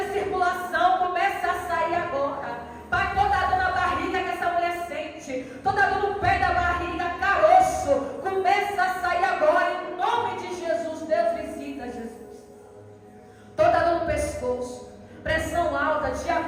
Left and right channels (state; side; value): identical; both; correlation 1.00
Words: circulação, começa a sair agora. Pai, toda dor na barriga que essa mulher sente, toda dor no pé da barriga, caroço, começa a sair agora, em nome de Jesus. Deus, visita, Jesus. Toda dor no pescoço, pressão alta,